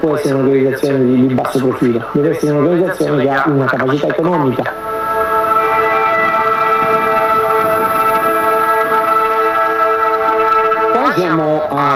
essere un'organizzazione di basso profilo, deve essere un'organizzazione che ha una capacità economica. Siamo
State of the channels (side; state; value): both; identical; correlation 1.00